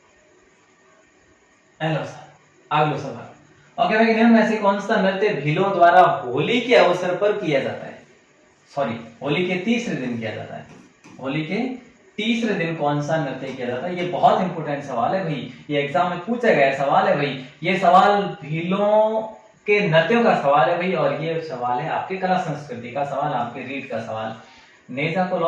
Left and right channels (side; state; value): both; identical; correlation 1.00